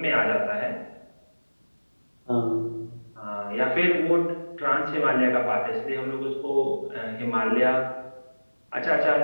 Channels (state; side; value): inverted; both; correlation -1.00